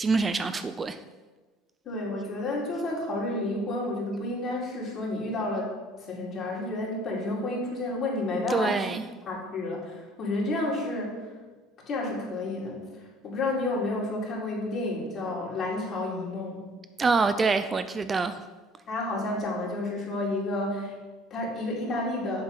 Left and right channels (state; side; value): normal; both; correlation 0.55